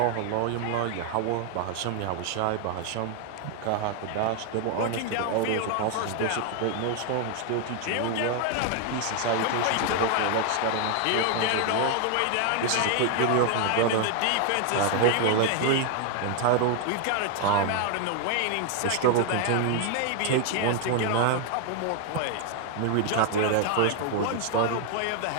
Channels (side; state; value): both; different; correlation 0.00